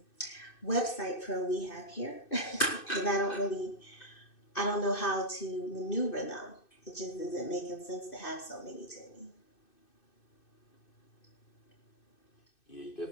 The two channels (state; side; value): late; right; 2.6 ms